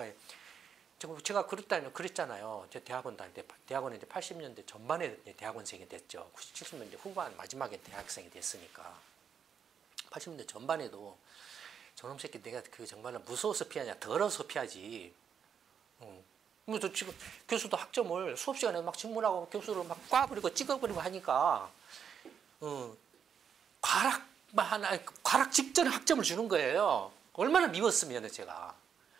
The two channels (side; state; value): left; quieter; 7.5 dB